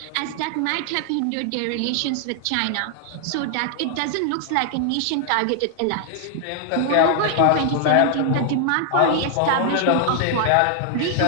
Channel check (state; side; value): different; both; correlation 0.00